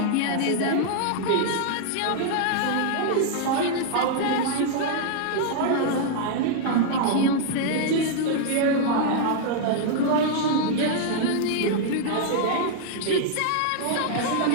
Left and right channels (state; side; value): different; both; correlation -0.01